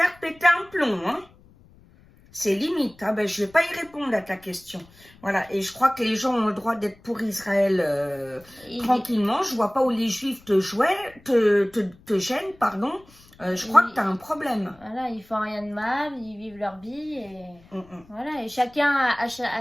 péter un plomb, hein. C'est limite, hein. Ben, je vais pas y répondre à ta question. Voilà, et je crois que les gens ont le droit d'être pour Israël tranquillement. Je vois pas où les Juifs te gênent, pardon. Je crois que tu as un problème. Voilà, ils font rien de mal, ils vivent leur vie et voilà, et chacun a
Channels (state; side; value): noise; left; rumble, 26 dB below the sound